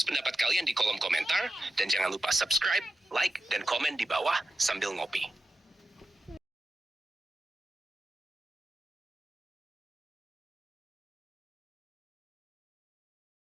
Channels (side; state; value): both; normal; correlation 0.91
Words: pendapat kalian di kolom komentar, dan jangan lupa subscribe, like, dan komen di bawah sambil ngopi.